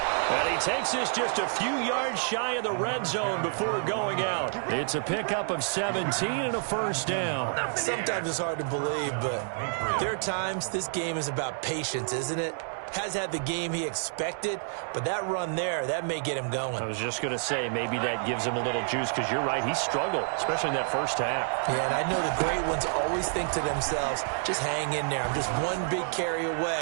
And he takes this just a few yards shy of the red zone before going out. It's a pickup of 17 and a first down. Sometimes it's hard to believe, but there are times this game is about patience, isn't it? Has had the game he expected, but that run there, that may get him going. I was just going to say, maybe that gives him a little juice, because you're right, he struggled, especially in that first half. Yeah, and I know the great ones always think to themselves, just hang in there. I'm just one big carry away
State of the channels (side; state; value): left; silent; digital silence